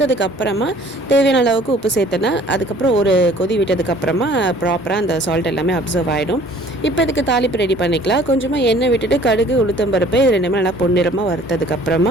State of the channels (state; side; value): normal; both; correlation 0.53